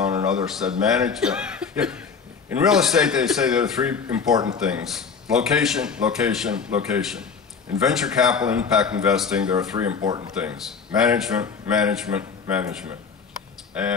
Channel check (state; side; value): quieter; right; 5.8 dB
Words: and others said, management. In real estate, they say there are three important things: location, location, location. In venture capital impact investing, there are three important things: management, management, management.